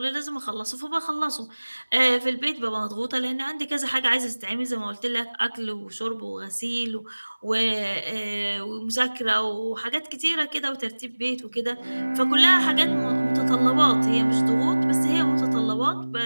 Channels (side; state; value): both; inverted; correlation -1.00